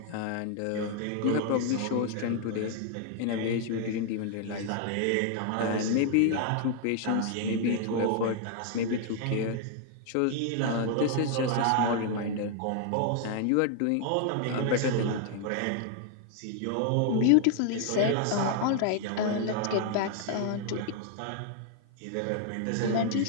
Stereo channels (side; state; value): both; different; correlation 0.00